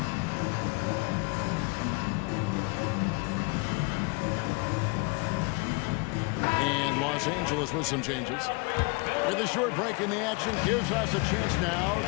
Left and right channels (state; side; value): quieter; right; 29.3 dB